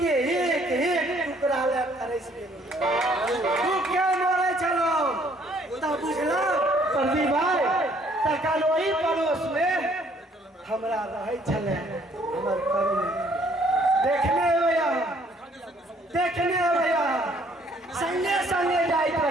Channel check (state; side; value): normal; both; correlation 0.63